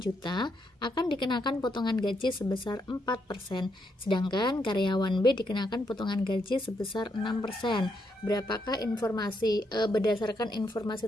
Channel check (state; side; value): normal; both; correlation 0.78